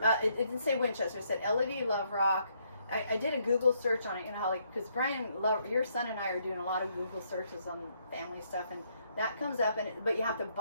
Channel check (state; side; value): inverted; both; correlation -0.72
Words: It didn't say Winchester. It said LED Love Rock. I did a Google search on it. You know how, like, because Brian, your son and I are doing a lot of Google searches on family stuff, and that comes up. But you have to